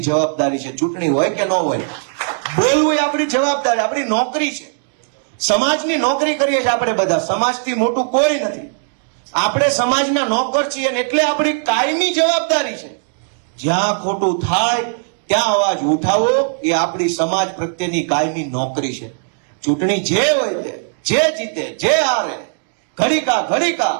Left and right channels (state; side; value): silent; left; digital silence